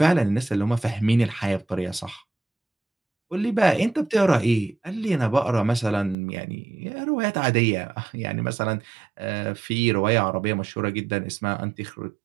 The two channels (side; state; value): left; drops out; at 6.2 s